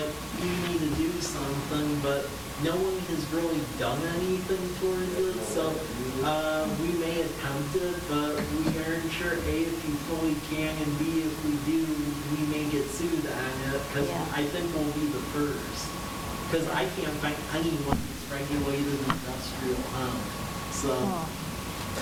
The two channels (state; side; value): identical; both; correlation 1.00